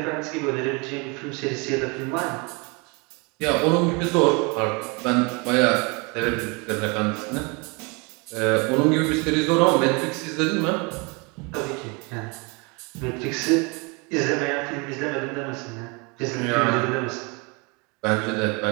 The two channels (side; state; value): left; quieter; 29.8 dB